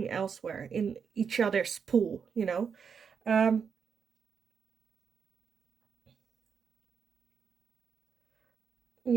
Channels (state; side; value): quieter; left; 6.5 dB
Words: elsewhere in each other's pool, you know.